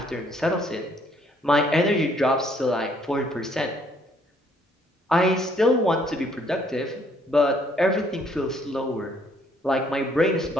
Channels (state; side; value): normal; both; correlation 0.65